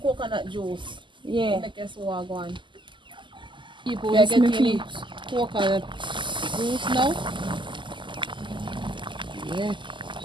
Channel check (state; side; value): late; left; 0.24 ms